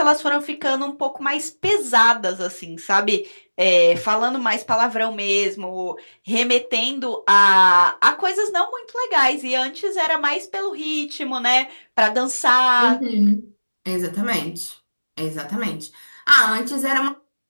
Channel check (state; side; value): inverted; both; correlation -1.00